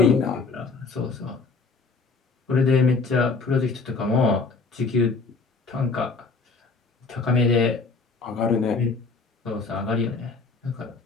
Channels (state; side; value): quieter; right; 4.4 dB